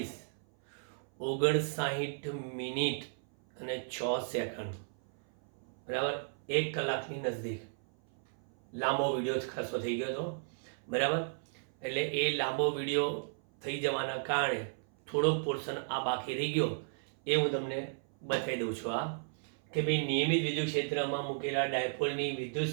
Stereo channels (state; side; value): silent; left; 55 dB below the other